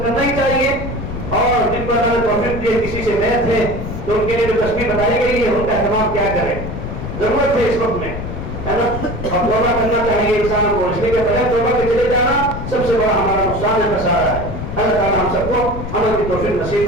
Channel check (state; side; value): noise; left; rumble, 7 dB below the sound